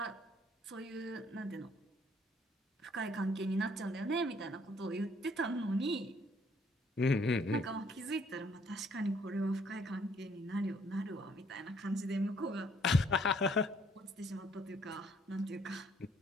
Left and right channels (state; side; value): normal; both; correlation 0.64